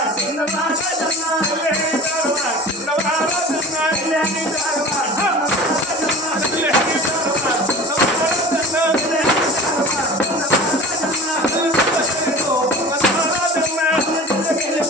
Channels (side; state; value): both; normal; correlation 0.38